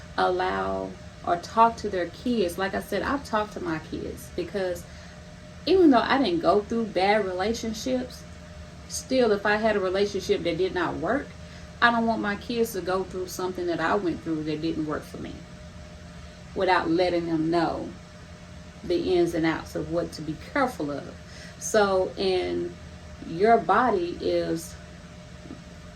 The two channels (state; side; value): identical; both; correlation 1.00